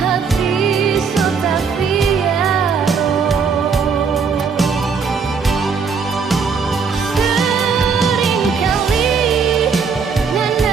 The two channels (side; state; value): left; quieter; 5.5 dB